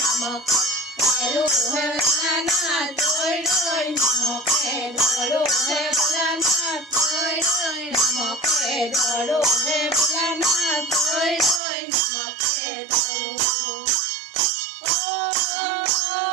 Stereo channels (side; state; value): left; drops out; at 11.6 s